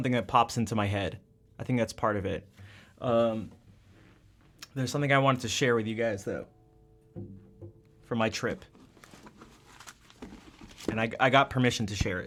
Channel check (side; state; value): both; identical; correlation 1.00